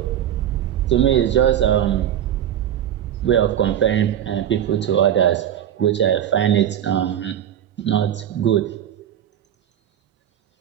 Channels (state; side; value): quieter; left; 10.3 dB